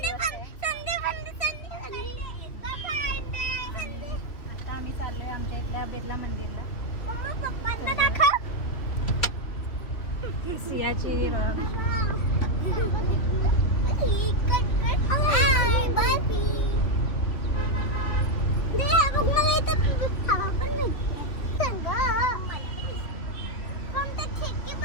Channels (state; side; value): late; right; 3.1 ms